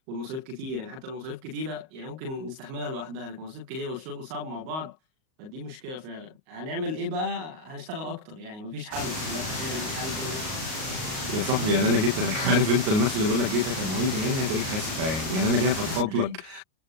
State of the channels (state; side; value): late; left; 38 ms